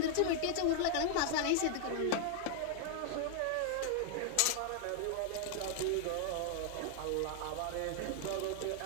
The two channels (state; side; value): different; both; correlation 0.00